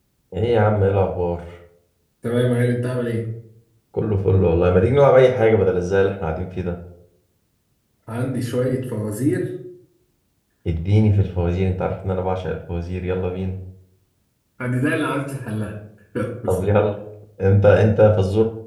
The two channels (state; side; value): identical; both; correlation 1.00